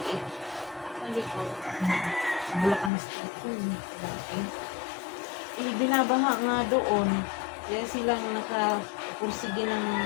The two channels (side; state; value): right; drops out; at 2.9 s